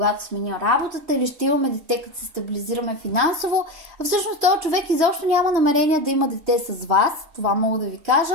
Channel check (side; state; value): left; late; 3.1 ms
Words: сменя работата, или ще имаме дете, като се стабилизираме финансово. А всъщност този човек изобщо няма намерение да има дете с вас, това мога да ви кажа.